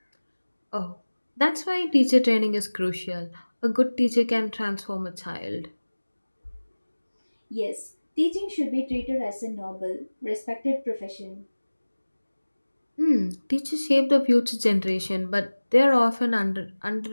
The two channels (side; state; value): both; inverted; correlation -1.00